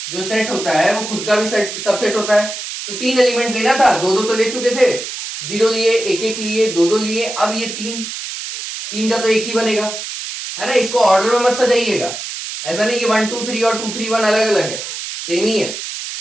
जो सेट होता है वो खुद का भी सबसेट होता है। तो 3 एलिमेंट लेना था, 2 तो ले चुके थे, 0 लिए, 1 लिए, 2 लिए। अब ये 3 का तो एक ही बनेगा, है ना। इसको ऑर्डर में मत सजाइएगा, ऐसा नहीं कि 1 2 3 और 2 3 1 अलग अलग है, सेम ही है।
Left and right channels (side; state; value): right; noise; hiss, 7 dB below the sound